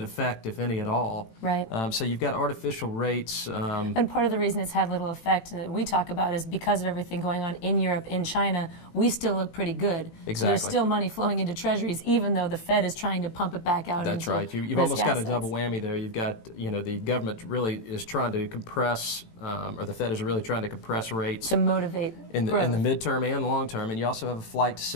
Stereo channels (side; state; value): right; late; 18 ms